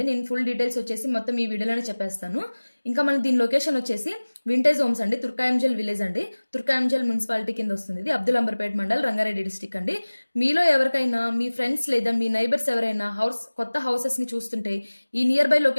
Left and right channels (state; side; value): inverted; both; correlation -1.00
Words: నేను ఫుల్ డీటెయిల్స్ వచ్చేసి మొత్తం ఈ వీడియోలోనే చెప్పేస్తాను. ఇంకా మన దీని లొకేషన్ వచ్చేసి వింటేజ్ హోమ్స్ అండి, తుర్కాయంజల్ విలేజ్ అండి. తుర్కాయంజల్ మున్సిపాలిటీ కింద వస్తుంది. ఇది అబ్దుల్ అంబర్పేట్ మండల్, రంగారెడ్డి డిస్టిక్ అండి. మీలో ఎవరికైనా మీ ఫ్రెండ్స్ లేదా మీ నైబర్స్ ఎవరైనా కొత్త హౌసెస్ ని చూస్తుంటే ఈ నియర్ బై